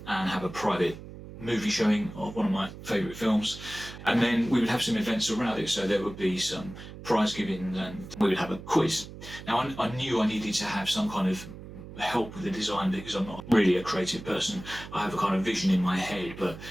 and have a private movie showing of one of my favourite films, and then we would have some events around it. So there would be some prize giving and we would have a quiz. Now I knew I needed to have some kind of help with the design because I'm not really a creative person. I have a kind of vision in my head, but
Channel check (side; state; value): right; noise; hum, 14 dB below the sound